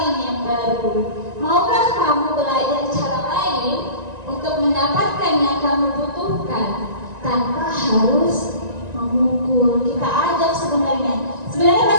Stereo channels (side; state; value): left; late; 1.9 ms